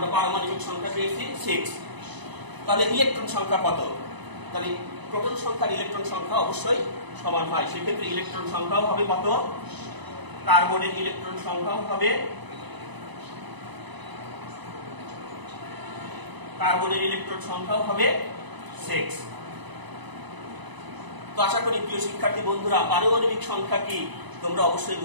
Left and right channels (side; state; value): left; late; 1.0 ms